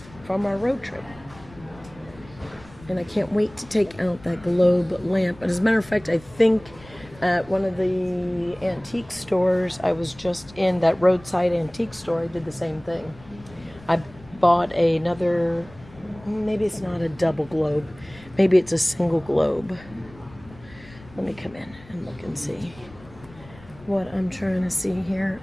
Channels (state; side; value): noise; left; rumble, 22 dB below the sound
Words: from our road trip. And I can't wait to take out that globe lamp. And as a matter of fact, I think at one of the antique stores I was just in, that roadside antique store, I did the same thing. I bought another, maybe it's not a double globe, maybe it's a single globe. Let me come in and look and see what I'm trying to see here.